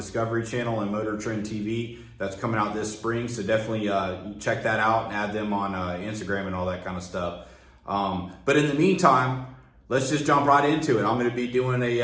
Channel and Motor Trend TV. That's coming out this spring, so definitely check that out and add them on Instagram and all that kind of stuff. But in the meantime, let's just jump right into it. I'm going to be doing a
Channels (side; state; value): both; identical; correlation 1.00